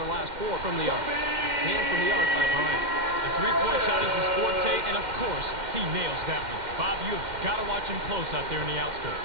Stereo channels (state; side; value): late; left; 2.1 ms